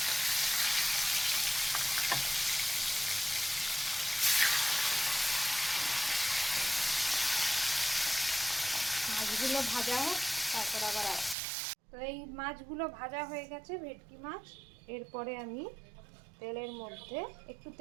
মাছগুলো ভাজা হোক, তারপর আবার তো এই মাছগুলো ভাজা হয়ে গেছে, ভেটকি মাছ। এরপরে আমি তেলের মধ্যে একটু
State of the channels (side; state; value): left; drops out; at 11.4 s